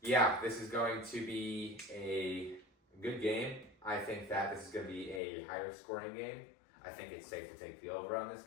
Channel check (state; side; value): drops out; right; at 5.2 s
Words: yeah, this is going to be a good game. I think that this is going to be a higher scoring game. I think it's safe to take the over on this